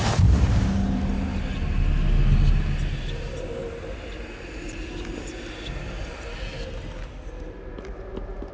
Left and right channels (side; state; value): both; identical; correlation 1.00